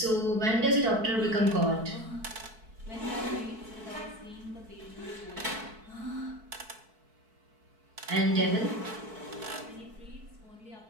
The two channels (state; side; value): late; left; 4.5 ms